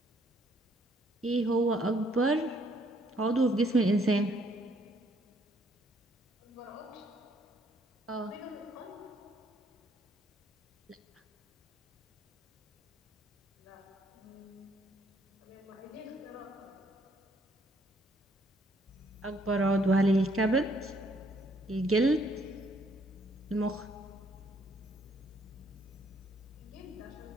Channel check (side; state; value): both; normal; correlation 0.67